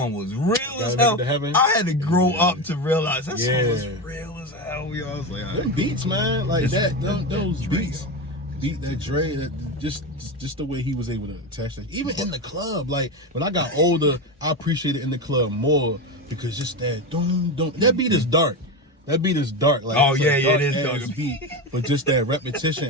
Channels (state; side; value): normal; both; correlation 0.18